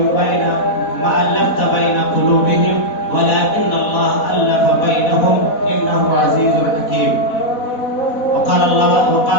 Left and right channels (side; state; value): right; late; 4.1 ms